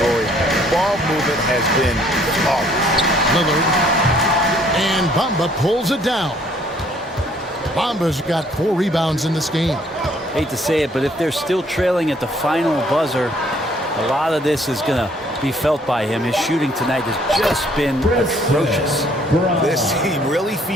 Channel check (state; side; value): normal; both; correlation 0.62